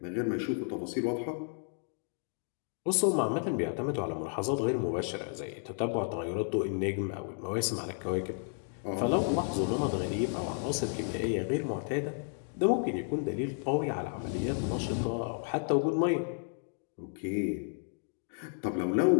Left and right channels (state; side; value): silent; right; 56 dB below the other